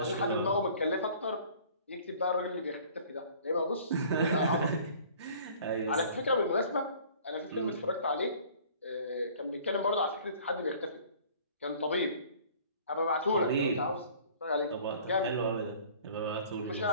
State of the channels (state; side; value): inverted; both; correlation -0.50